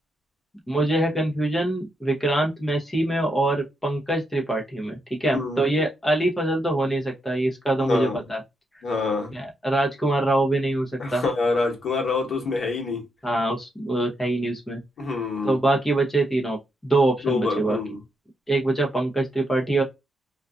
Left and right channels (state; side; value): normal; both; correlation 0.80